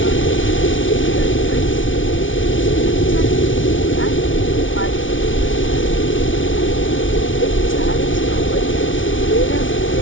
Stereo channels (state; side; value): late; right; 0.56 ms